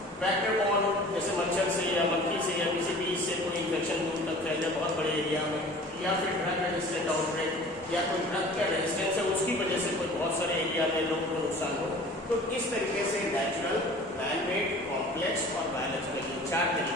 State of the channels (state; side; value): normal; both; correlation 0.44